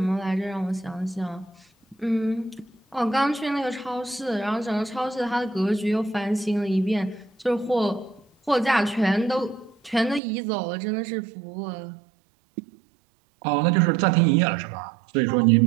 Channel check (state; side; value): drops out; left; at 10.2 s